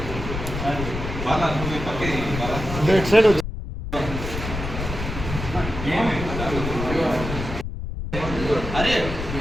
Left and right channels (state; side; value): noise; left; rumble, 6 dB below the sound